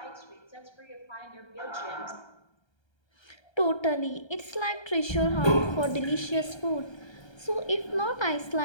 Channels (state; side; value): late; right; 1.3 ms